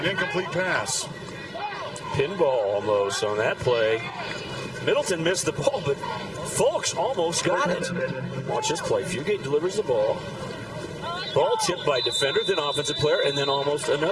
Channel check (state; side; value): identical; both; correlation 1.00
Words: incomplete pass. Pinball almost on that play. Middleton missed the ball, but Folks almost got it. Watch this play. Fugate delivers the ball. Ball tipped by defender, then offensive player, and then almost